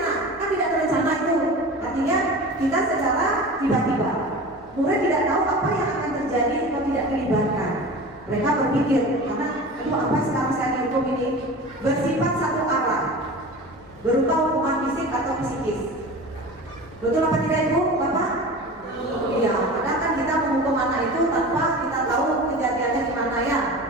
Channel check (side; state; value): left; noise; hum, 27 dB below the sound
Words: kan tidak terencana itu. Artinya kita secara tiba-tiba. Murid tidak tahu apa yang akan terjadi kalau tidak dilibatkan. Mereka berpikir, karena aduh apa sekarang saya dihukum ini, bersifat satu arah, berupa hukuman fisik atau psikis. Betul apa tidak Ibu, Bapak? Iya, kadang kan kita menghukum anak itu tanpa kita tahu kejadiannya gimana ya.